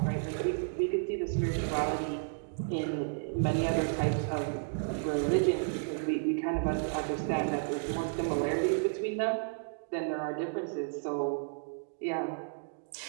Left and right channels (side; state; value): left; silent; digital silence